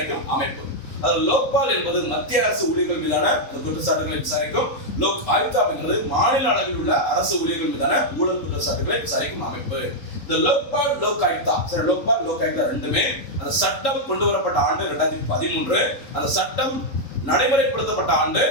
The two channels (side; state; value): right; late; 3.8 ms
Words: அமைப்பு. அது லோக்பால் என்பது மத்திய அரசு ஊழியர்கள் மீதான குற்றச்சாட்டுகளை விசாரிக்கும். லோக் ஆயுக்தா என்பது மாநில அளவில் உள்ள அரசு ஊழியர்கள் மீதான ஊழல் குற்றச்சாட்டுகளை விசாரிக்கும் அமைப்பு. இந்த லோக்பால் லோக் ஆயுக்தா சரி லோக்பால் லோக் ஆயுக்தா ரெண்டுமே அந்த சட்டம் கொண்டு வரப்பட்ட ஆண்டு 2013, அந்த சட்டம் நடைமுறைப்படுத்தப்பட்ட ஆண்டு